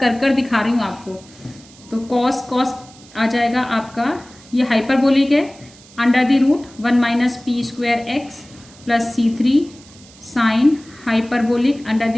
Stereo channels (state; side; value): noise; right; hiss, 23 dB below the sound